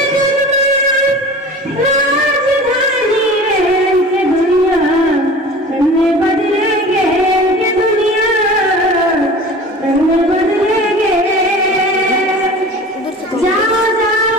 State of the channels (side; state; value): both; normal; correlation 0.39